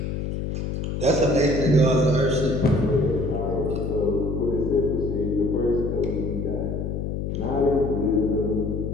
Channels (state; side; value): noise; left; hum, 3 dB below the sound